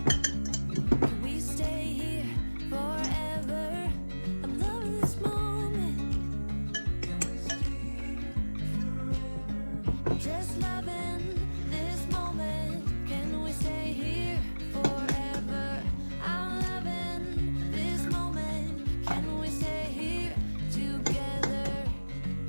Can we stay here forever? I'm loving this moment. Can we stay here forever? Just loving this moment. Can we stay here forever? I'm loving this moment. Can we stay here together?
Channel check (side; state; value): both; inverted; correlation -1.00